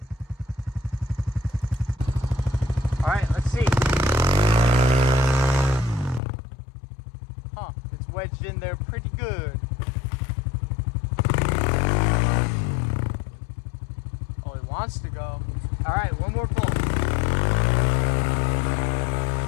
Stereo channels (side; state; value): right; drops out; at 6.2 s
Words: All right, let's see. Huh, it's wedged in there pretty good. Oh, it wants to go. All right, one more pull.